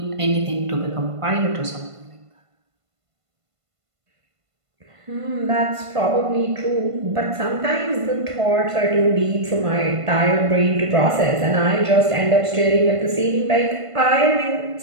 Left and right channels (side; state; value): left; late; 1.5 ms